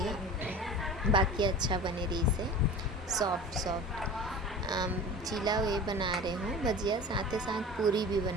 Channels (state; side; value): normal; both; correlation 0.36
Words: हो। बाकी अच्छा बने रही से सॉफ्ट चीला वे बना रहे हूँ भजिया, साथ ही साथ पूरी भी